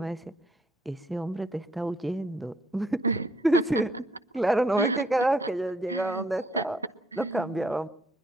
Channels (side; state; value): both; normal; correlation 0.68